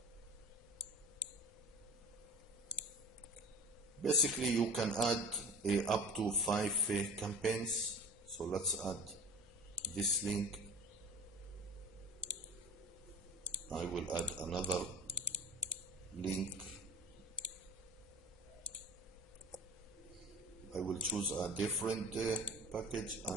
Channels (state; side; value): normal; both; correlation 0.37